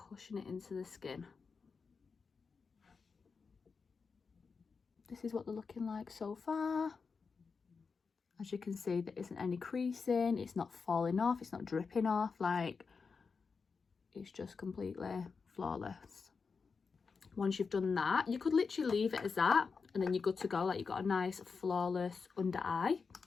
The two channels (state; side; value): quieter; right; 5.1 dB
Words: it into the skin. This is what they're looking like so far. As you can see, there isn't any creasing, it's not falling off, it's not dripping off, like, it's just completely flawless. Once you've done that, you could literally leave it as that and then you're good to go, like you've got a nice flawless under eye.